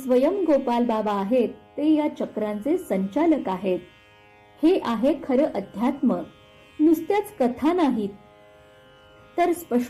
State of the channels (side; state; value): both; identical; correlation 1.00